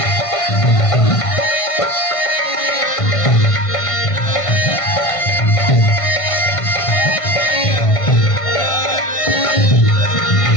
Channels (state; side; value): late; right; 1.5 ms